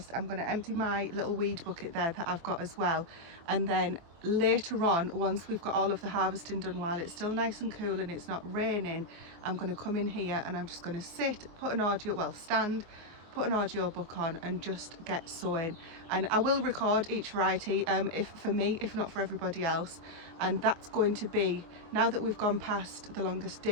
I'm going to empty my little weed bucket there that I've got as well, and then later on, once we've got all of the harvesting done, while it's still nice and cool and it's not raining, I'm going to come in here and I'm just going to stand, put an audio book on and just get sowing. And I will record each variety, if not for everybody else. And that's going to be, now that we've gone past the longest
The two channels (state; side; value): late; left; 24 ms